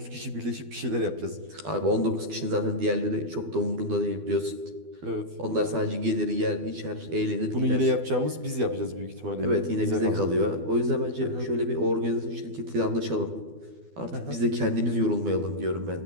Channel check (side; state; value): left; late; 12 ms